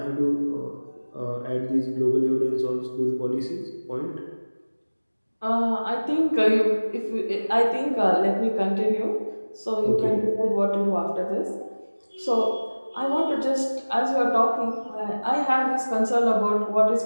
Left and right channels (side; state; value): both; inverted; correlation -1.00